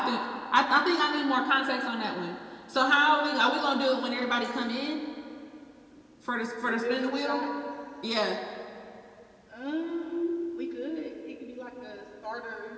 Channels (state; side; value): identical; both; correlation 1.00